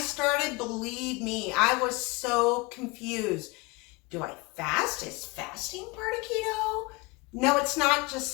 believe me, I was so confused. Do I fast? Is fasting part of keto? No, it's not, just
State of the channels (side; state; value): right; quieter; 25.5 dB